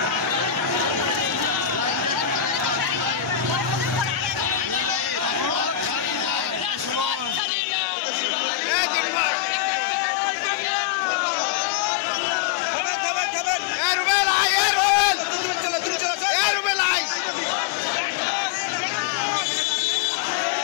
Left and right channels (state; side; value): drops out; right; at 7.4 s